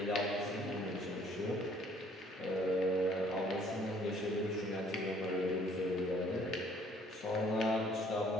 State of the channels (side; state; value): both; normal; correlation 0.60